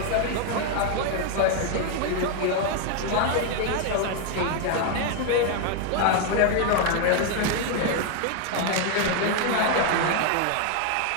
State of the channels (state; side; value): different; both; correlation 0.01